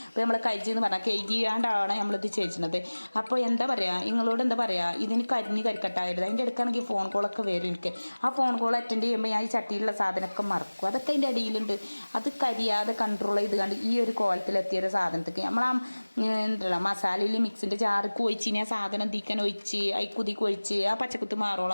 അപ്പോൾ നമ്മൾ കഴിച്ച് എന്ന് പറഞ്ഞാൽ കൈകിയാണ്ടാണ് നമ്മളിത് ചെയ്യുന്നത്. അപ്പോൾ എന്താ പറയുക, നിങ്ങളോട് എന്താ പറയുക, ഇതിന് കരിക്കട്ടായിരുന്നു. അതിൻ്റെ അടുക്കാണെങ്കിൽ ഫോൺ കോളൊക്കെ വരും എനിക്ക്. ആ ഫോൺ കോൾ അറ്റൻഡ് ചെയ്യുമ്പോൾ ഞാൻ ഈ ചട്ടിയിലുള്ള സാധനമൊക്കെ മറക്കും. അതൊക്കെ അതിൻ്റെ അടിയിലുണ്ട്. അത് കരിയാതെ കൺട്രോൾ ചെയ്ത് കണ്ട് ഈ ഒരു കോലത്തിലെത്തിയൊരു സാധനത്തേക്ക് നമ്മൾ എന്തല്ല മസാലയിൽ മിക്സിൻ്റെ ജാർക്ക് ഒഴിച്ച് ആ സാധനം തീക്കാൻ ഒഴിച്ച് കുതിക്ക് ഒഴിച്ച് ആ പച്ചക്കുത്ത്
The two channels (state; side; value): inverted; both; correlation -1.00